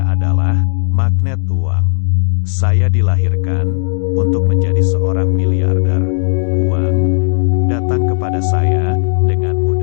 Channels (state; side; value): silent; right; digital silence